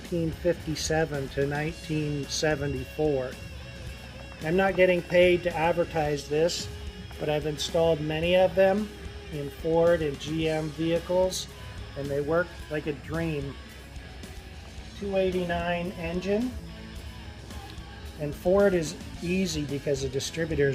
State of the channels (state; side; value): identical; both; correlation 1.00